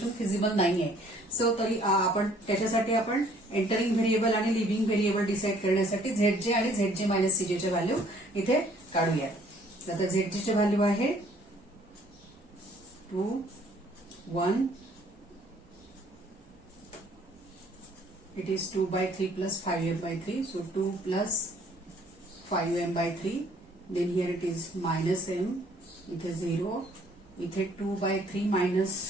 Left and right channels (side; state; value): both; normal; correlation 0.60